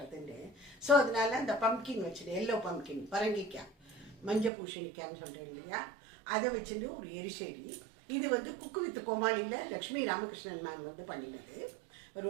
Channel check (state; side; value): drops out; left; at 4.5 s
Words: ஸோ அதனால இந்த பம்கின் வச்சுட்டு எல்லோ பம்கின் பரங்கிக்காய் மஞ்சள் பூசணிக்கான்னு சொல்கிறேன் இல்லையா, அதை வச்சுட்டு ஒரு எரிசேரி. இது வந்து குக்கு வித் கோமாளியில் லக்ஷ்மி ராமகிருஷ்ணன் மேம் வந்து பண்ணினது.